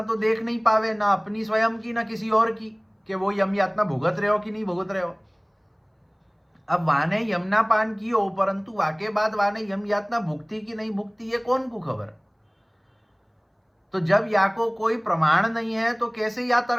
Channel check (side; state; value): both; identical; correlation 1.00